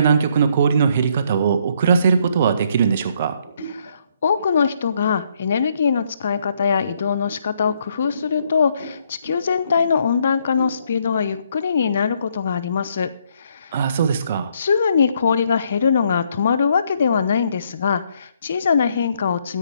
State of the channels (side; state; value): both; inverted; correlation -0.71